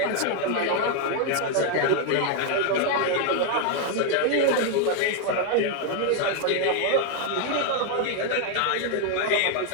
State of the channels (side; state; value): both; different; correlation 0.00